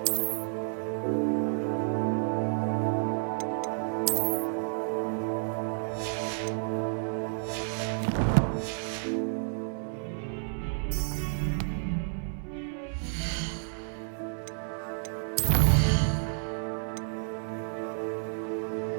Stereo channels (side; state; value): left; silent; 57 dB below the other